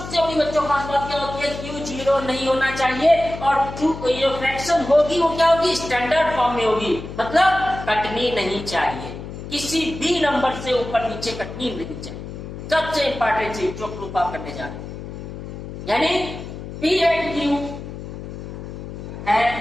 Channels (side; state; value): left; noise; hum, 10 dB below the sound